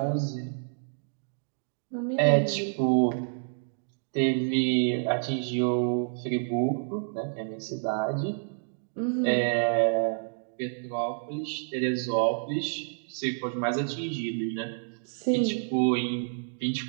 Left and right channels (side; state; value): left; silent; digital silence